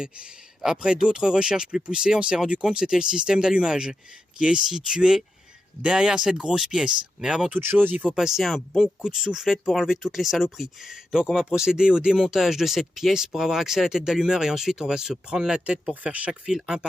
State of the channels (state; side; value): normal; both; correlation 0.87